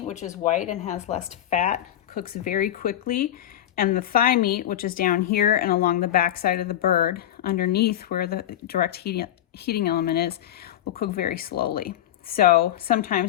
which is white and has less fat, cooks very quickly. And the thigh meat, which is down here and along the back side of the bird, underneath where the direct heating element is, will cook very slowly. So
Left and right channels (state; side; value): quieter; right; 11.9 dB